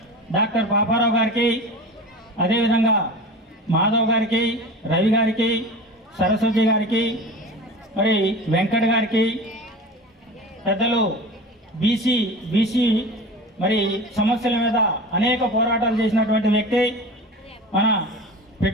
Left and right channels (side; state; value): both; normal; correlation 0.33